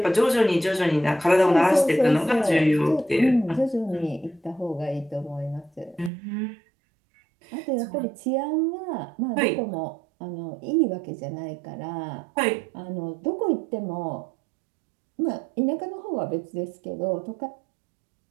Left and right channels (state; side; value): drops out; left; at 6.1 s